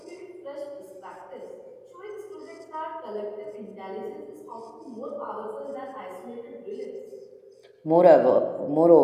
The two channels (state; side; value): identical; both; correlation 1.00